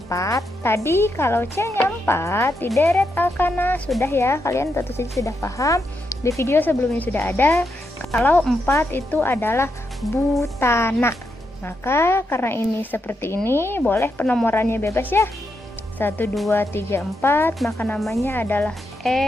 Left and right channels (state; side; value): normal; both; correlation 0.83